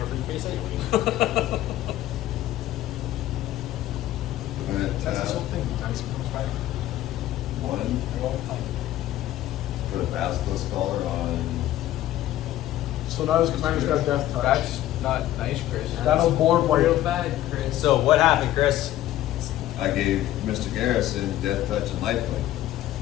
for your face anyway. I'm gonna That's tap this whole thing. Dice comes back. 1. Put a Basilisk Collar on. So now his commander's got Death Touch. That's not nice, Chris. That'll board real white. bad, Chris. So what happened, Chris? I gave Mr. Garrison Death Touch and Lifelink.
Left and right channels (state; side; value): quieter; right; 13.9 dB